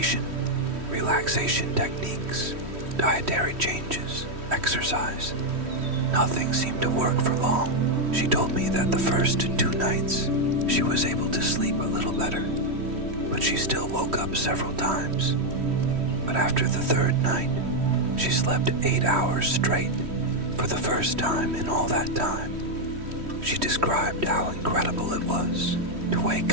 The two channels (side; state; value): left; late; 3.1 ms